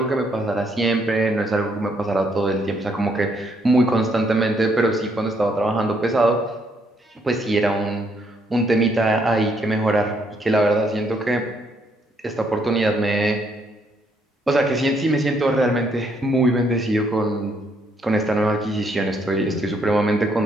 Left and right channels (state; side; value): normal; both; correlation 0.71